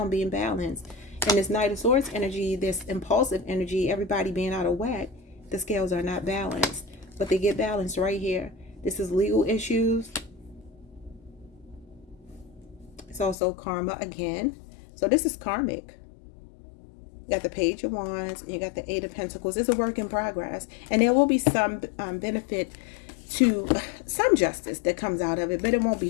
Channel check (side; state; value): right; drops out; at 13.4 s